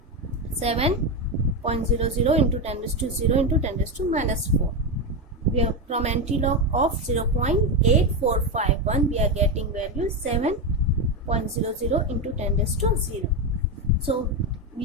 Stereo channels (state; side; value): normal; both; correlation 0.11